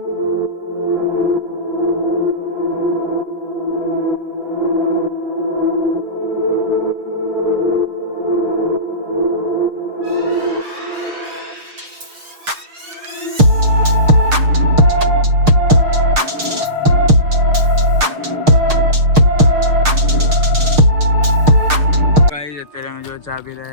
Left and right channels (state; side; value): late; left; 6.5 ms